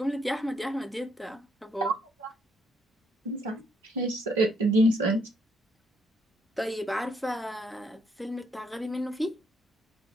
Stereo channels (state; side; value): normal; both; correlation 0.72